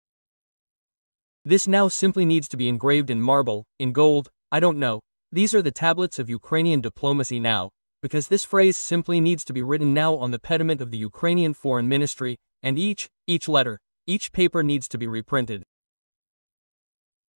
This now simply needs to be engraved in marble, in gold, I don't know. These are the tablets of Ukrainian diplomacy now, because this phrase simply needs to be written now on the pediment of the Ukrainian Foreign Ministry, and each letter, each paper needs to be reprinted.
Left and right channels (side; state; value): both; inverted; correlation -1.00